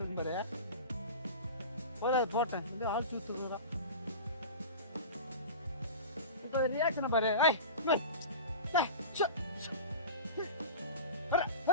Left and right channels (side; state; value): both; inverted; correlation -0.31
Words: இருக்கும் பாரு. போதாது போட்டேன், வந்து ஆள் தூத்துறா. இப்போ ரியாக்ஷனை பாரு.